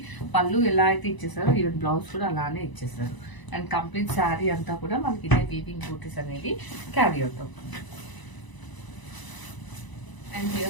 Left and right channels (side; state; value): right; late; 1.0 ms